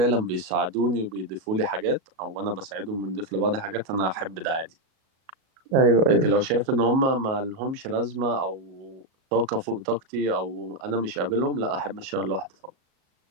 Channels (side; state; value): left; late; 37 ms